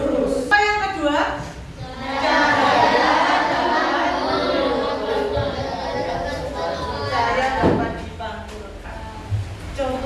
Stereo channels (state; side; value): identical; both; correlation 1.00